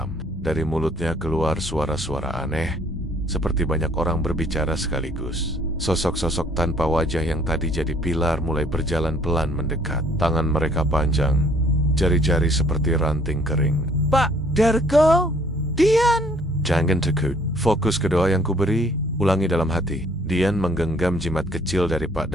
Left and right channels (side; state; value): both; normal; correlation 0.61